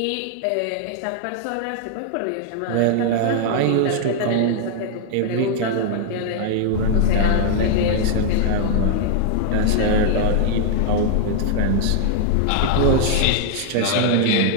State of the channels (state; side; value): different; both; correlation 0.00